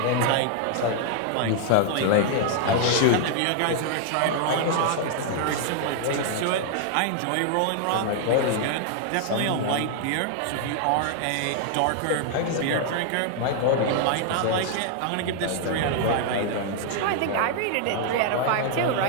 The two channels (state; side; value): different; both; correlation 0.00